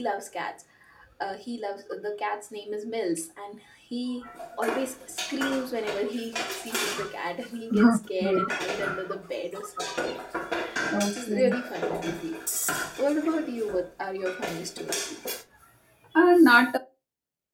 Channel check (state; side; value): identical; both; correlation 1.00